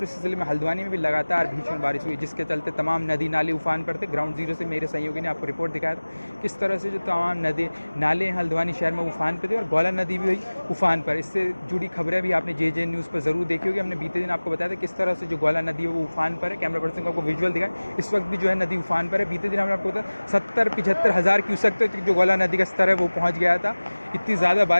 इस ज़िले में हल्द्वानी में भी लगातार भीषण बारिश हुई, जिसके चलते तमाम नदी नाले उफान पर थे। ग्राउंड जीरो से मेरे सहयोगी ने आपको रिपोर्ट दिखाया था किस तरह से जो तमाम नदी नाले हल्द्वानी शहर में उफान पर थे और गौला नदी भी हुई उफान पर। इससे जुड़ी खबरें भी आपने जेजेएन न्यूज़ पर ज़रूर देखी होगी। हमने बीते दिन आपको बताया था किस तरह से जो गौला नदी है वो उफान पर है। कैमरा पर्सन को आपको विजुअल दिखाएं, इस वक्त भी जो है नदी उफान पर है। बीते दिन हमने आपको बताया 70-75 हज़ार क्यूसेक तक जो गौला नदी का स्तर है वो पहुँच गया था। इतनी ज़्यादा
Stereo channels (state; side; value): inverted; both; correlation -1.00